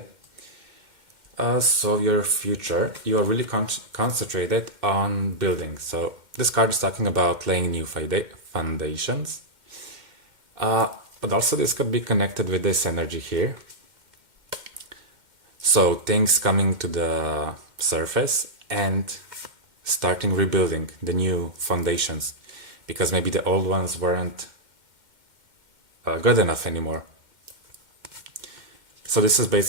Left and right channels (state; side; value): late; left; 2.1 ms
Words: So your future, you are really concentrated on building. So this card is talking about laying new foundations. But also this could be connected with this energy here. So things coming to the surface and starting rebuilding the new foundations, because maybe the old ones weren't good enough anymore. So this is